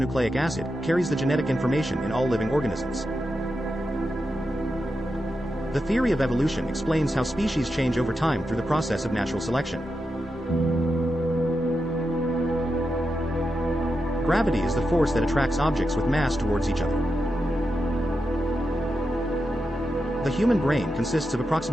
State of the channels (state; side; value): normal; both; correlation 0.88